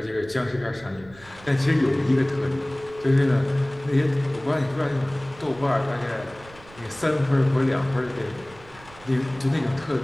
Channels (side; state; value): right; noise; rumble, 22 dB below the sound